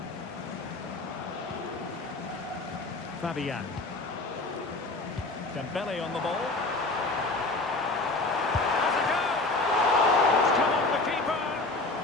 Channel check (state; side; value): quieter; right; 3.2 dB